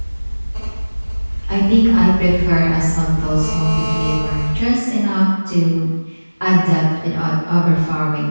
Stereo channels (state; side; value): inverted; both; correlation -1.00